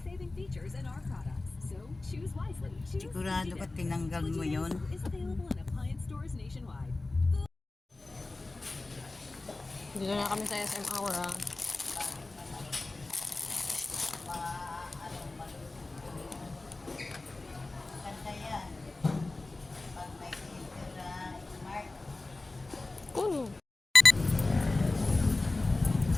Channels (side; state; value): right; quieter; 3.2 dB